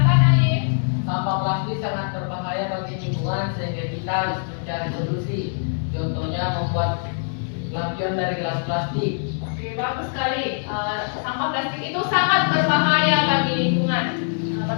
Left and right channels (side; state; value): right; silent; digital silence